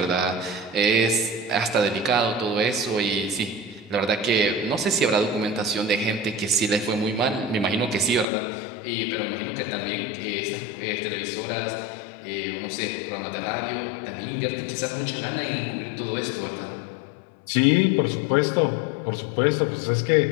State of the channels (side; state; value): right; drops out; at 8.2 s